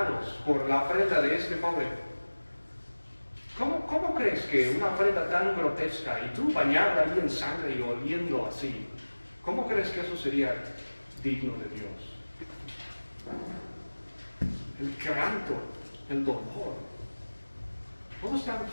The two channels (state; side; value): inverted; both; correlation -1.00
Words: por la ofrenda de este joven. ¿Cómo crees que una ofrenda tan grotesca y tú bañado ahí en sangre y oliendo así, cómo crees que eso sería digno de Dios? El quebranto, el dolor, todo es tan